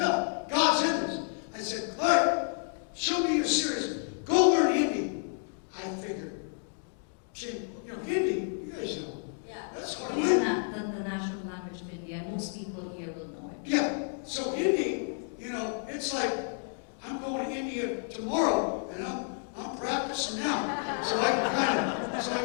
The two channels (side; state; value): right; silent; 57 dB below the other